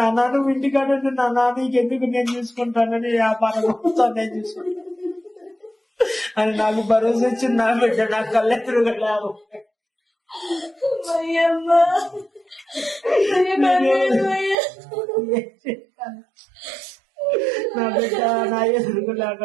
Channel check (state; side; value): drops out; left; at 14.6 s